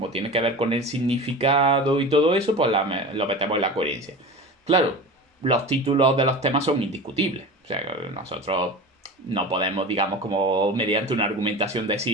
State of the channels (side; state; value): both; normal; correlation 0.32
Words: tiene que ver con el significado y todo eso, pues lo metemos en la coherencia. Claro, los títulos de los temas son indiscutibles. O sea, nosotros no podemos, digamos, como mediante una argumentación